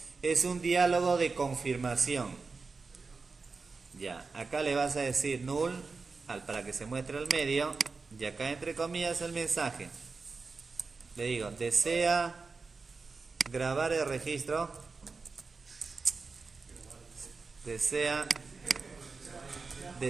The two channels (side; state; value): left; quieter; 4.3 dB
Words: Es un diálogo de confirmación. Ya, acá le vas a decir null para que se muestre al medio, y acá entre comillas el mensaje. Le digo, desea grabar el registro, desea